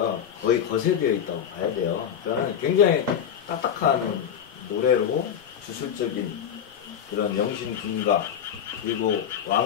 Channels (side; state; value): right; quieter; 8.7 dB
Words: 거의 거세되어 있다고 봐야 돼요. 그러니까 굉장히 딱딱한 노래로 주술적인 그런 영신 군가, 그리고